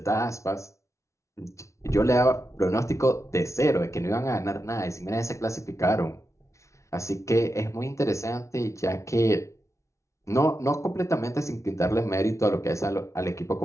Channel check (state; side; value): late; right; 0.14 ms